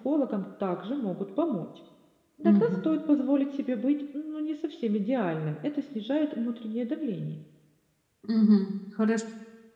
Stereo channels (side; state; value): both; identical; correlation 1.00